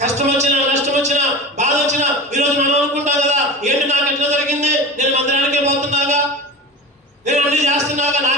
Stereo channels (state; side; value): normal; both; correlation 0.29